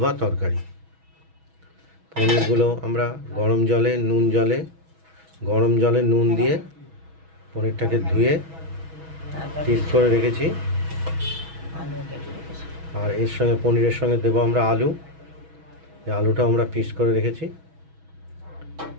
বা তরকারি। পনিরগুলো আমরা গরম জলে নুন দিয়ে পনিরটাকে ধুয়ে পিস করে রেখেছি। আর এর সঙ্গে পনিরের সঙ্গে দেবো আমরা আলু। এই আলুটা আমরা পিস করে রেখেছি।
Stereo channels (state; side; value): late; left; 6.2 ms